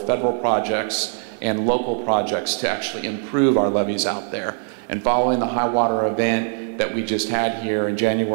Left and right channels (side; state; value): left; silent; 64 dB below the other